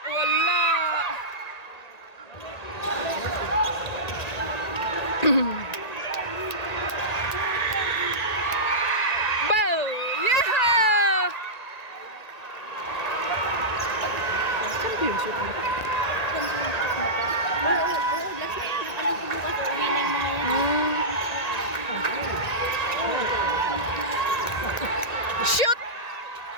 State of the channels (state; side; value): late; right; 1.9 ms